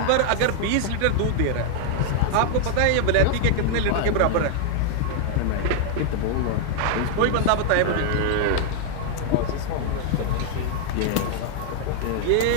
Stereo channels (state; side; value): different; both; correlation -0.01